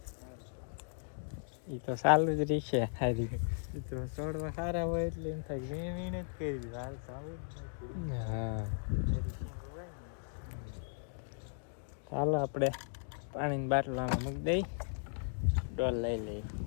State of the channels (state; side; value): silent; right; digital silence